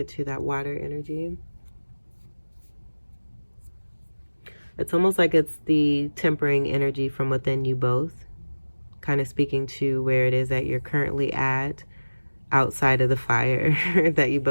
to that water energy. It's almost like it's the tempering energy from within you both, kind of speaking to where it is that you're currently at, outside of the fire that you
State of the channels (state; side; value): inverted; both; correlation -1.00